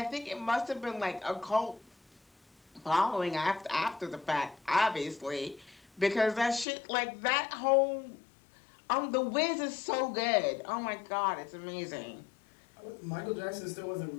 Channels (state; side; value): drops out; right; at 6.7 s